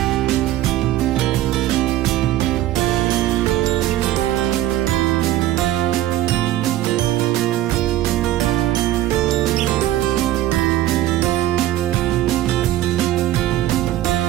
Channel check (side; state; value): left; quieter; 13.9 dB